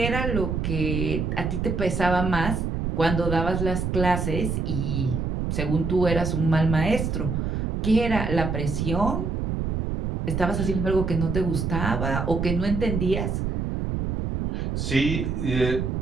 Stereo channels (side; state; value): right; noise; rumble, 1 dB below the sound